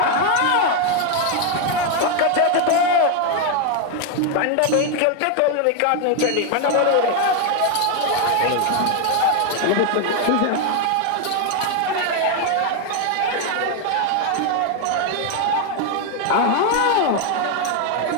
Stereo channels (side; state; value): both; different; correlation 0.01